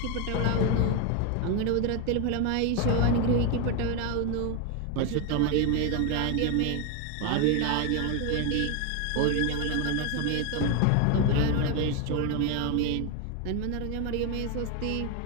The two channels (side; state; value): both; different; correlation 0.01